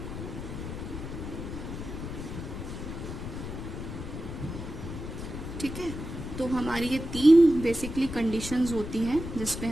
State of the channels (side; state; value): left; noise; rumble, 7 dB below the sound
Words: ठीक है, तो हमारी ये 3 बेसिकली कंडीशंस होती हैं जिस पे